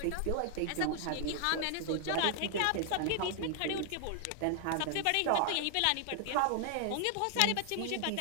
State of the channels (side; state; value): both; different; correlation 0.00